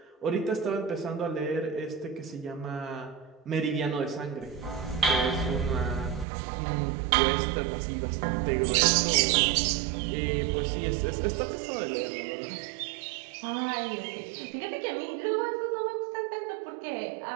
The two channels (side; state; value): left; drops out; at 6.2 s